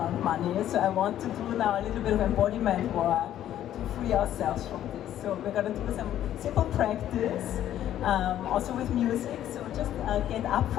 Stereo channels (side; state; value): right; quieter; 11.7 dB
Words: money. So I want to do now a little bit of embodiment work to free ourselves from this. So we're going to do some simple practice, also with music. So just get up